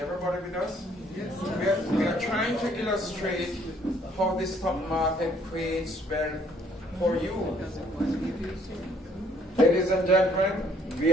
with us? Yes. We are trying to illustrate how the stock market creates wealth for you. Ladies and gentlemen, we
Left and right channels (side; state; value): both; normal; correlation 0.63